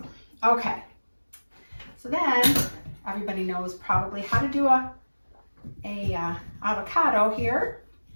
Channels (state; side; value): inverted; both; correlation -1.00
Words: Okay. So then everybody knows probably how to do a avocado here.